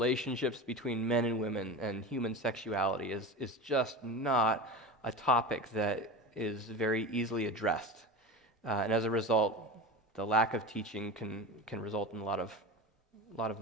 between men and women and human sexuality is just not a topic that is very easily addressed. And as a result, the lack of teaching can result in a lot of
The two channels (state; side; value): normal; both; correlation 0.28